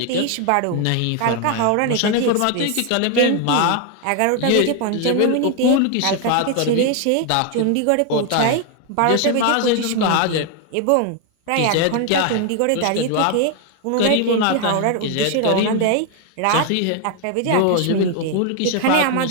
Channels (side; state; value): both; different; correlation 0.01